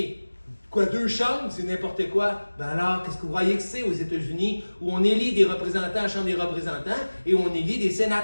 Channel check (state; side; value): inverted; both; correlation -1.00